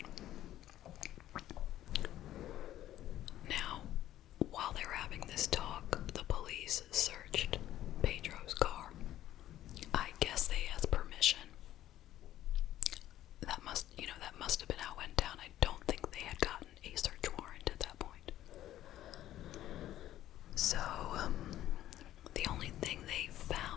Now, while they were having this talk, the police searched Pedro's car. I guess they asked permission. That must have been how it went down. I don't think they had gotten a search warrant at that point. So, the only thing they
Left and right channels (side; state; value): right; quieter; 13.2 dB